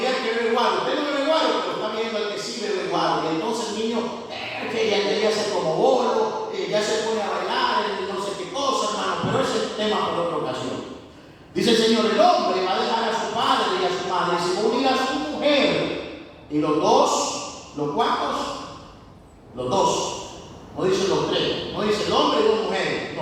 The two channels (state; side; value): identical; both; correlation 1.00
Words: que bebe guaro. Usted no bebe guaro, pero está viendo al que sí bebe guaro. Y entonces el niño, que ya se como bolo, ya se pone a bailar, no sé qué cosa, hermano. Pero ese es el tema por otra ocasión. Dice el Señor: el hombre va a dejar a su padre y a su madre y se va a unir a su mujer. Y los dos, ¿los cuantos? Los dos. No dice los tres, no dice el hombre y dos mujeres,